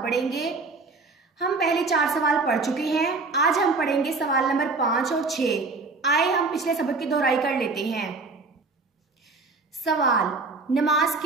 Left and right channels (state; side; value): quieter; left; 3.9 dB